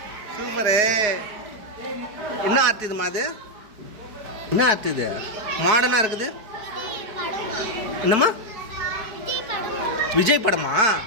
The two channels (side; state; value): left; late; 4.8 ms